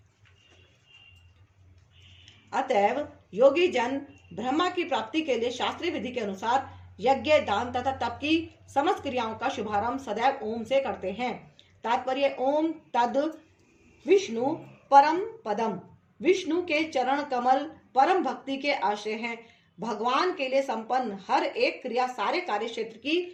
अतएव योगी जन ब्रह्मा की प्राप्ति के लिए शास्त्रीय विधि के अनुसार यज्ञ, दान तथा तप की समस्त क्रियाओं का शुभारंभ सदैव ओम से करते हैं। तात्पर्य ओम तद विष्णु परम पदम, विष्णु के चरण कमल परम भक्ति के आश्रय हैं। भगवान के लिए संपन्न हर एक क्रिया सारे कार्य क्षेत्र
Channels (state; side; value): identical; both; correlation 1.00